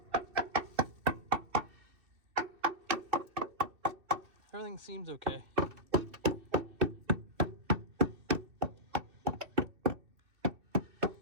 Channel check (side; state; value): left; late; 2.6 ms